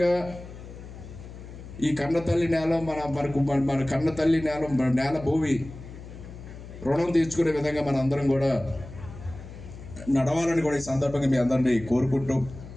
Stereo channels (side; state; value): left; noise; hum, 14 dB below the sound